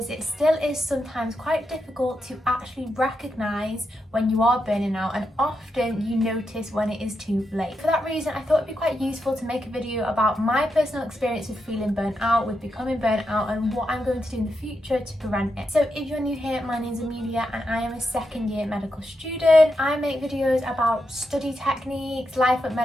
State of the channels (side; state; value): both; normal; correlation 0.85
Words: it still is sometimes quite difficult to actually recognize when you are burning out, and often you notice when it is too late. For that reason, I thought it'd be quite useful to make a video about my personal experience with feeling burnt out, with becoming burnt out, and what I'm going to do in the future to prevent it. So if you're new here, my name's Amelia and I am a second year medical student. I make videos about study techniques, life at